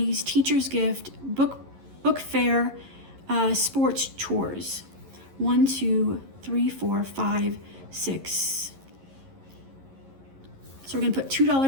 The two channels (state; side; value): late; left; 11 ms